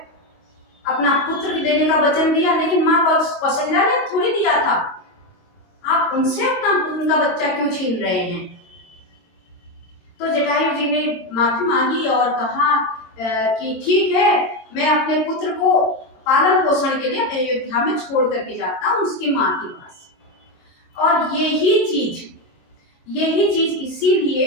अपना पुत्र देने का वचन दिया, लेकिन माँ कौशल्या ने थोड़ी दिया था। आप उनसे उनका बच्चा क्यों छीन रहे हैं? तो जटायु जी ने माफी मांगी और कहा कि ठीक है, मैं अपने पुत्र को पालन पोषण के लिए अयोध्या में छोड़ करके जाता हूँ उसकी माँ के पास। और यही चीज इसीलिए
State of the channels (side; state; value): right; late; 23 ms